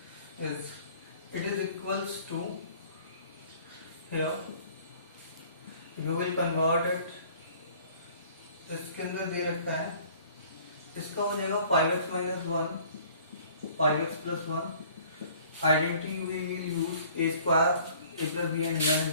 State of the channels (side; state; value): both; inverted; correlation -0.53